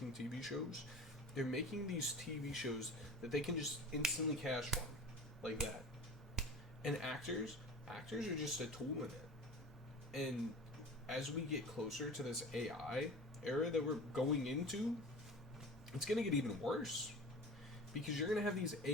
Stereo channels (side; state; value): both; normal; correlation 0.35